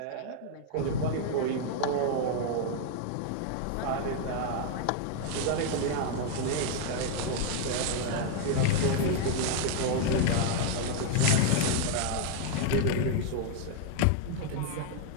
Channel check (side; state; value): both; different; correlation 0.00